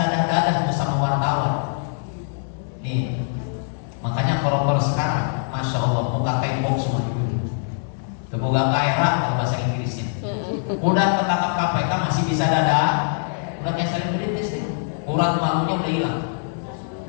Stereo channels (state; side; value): silent; right; 64 dB below the other